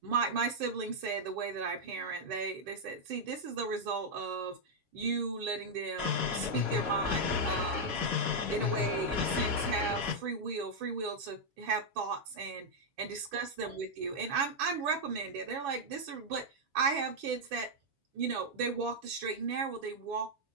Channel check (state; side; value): late; left; 7.2 ms